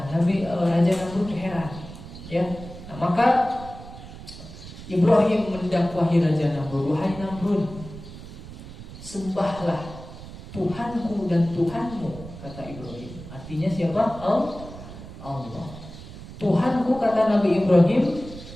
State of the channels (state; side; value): noise; right; rumble, 14 dB below the sound